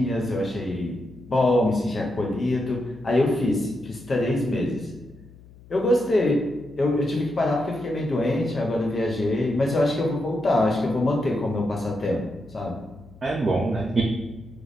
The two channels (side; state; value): left; noise; hum, 22 dB below the sound